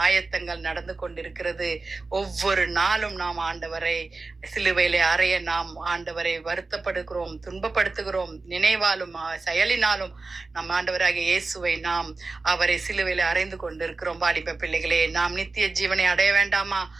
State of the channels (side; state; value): left; quieter; 3.7 dB